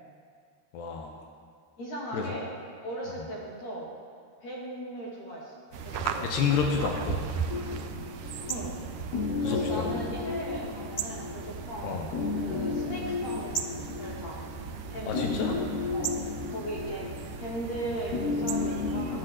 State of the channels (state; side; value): late; right; 13 ms